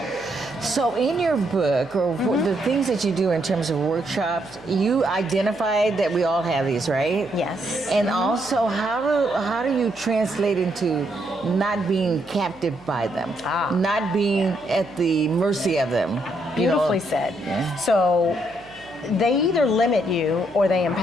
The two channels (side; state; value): right; noise; hum, 27 dB below the sound